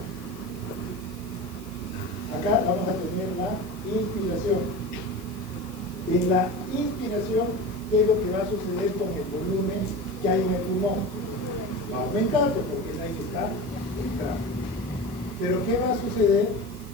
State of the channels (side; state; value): right; noise; hiss, 20 dB below the sound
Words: Acá vamos a tener la inspiración. En la inspiración, ¿qué es lo que va a suceder con el volumen que hay en el pulmón? Va a aumentar porque el aire está entrando. Pero ¿qué va a suceder